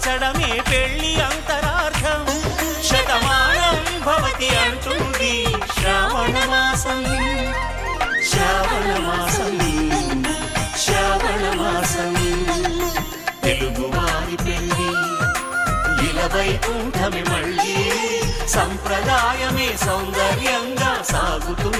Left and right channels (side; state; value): both; identical; correlation 1.00